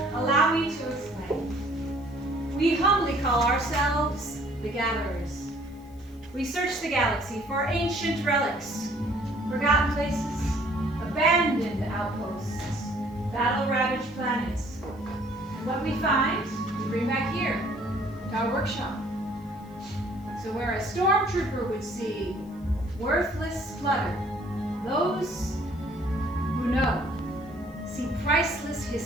Allow me to explain. We humbly call ourselves the Gatherers. We search the galaxy for ancient relics, forgotten places, abandoned outposts, battle-ravaged planets. And what we find, we bring back here, to our workshop. So where a stormtrooper would see worthless clutter, those who know see priceless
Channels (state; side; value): noise; left; hiss, 30 dB below the sound